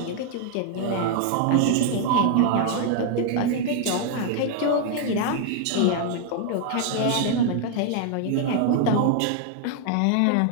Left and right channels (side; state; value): both; different; correlation 0.00